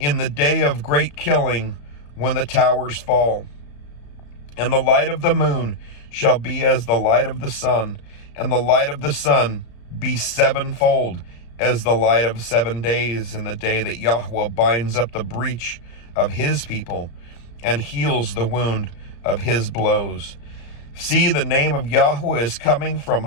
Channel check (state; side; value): late; right; 34 ms